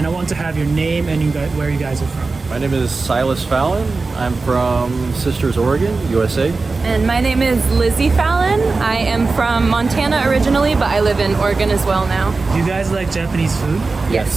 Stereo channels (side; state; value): left; quieter; 3.9 dB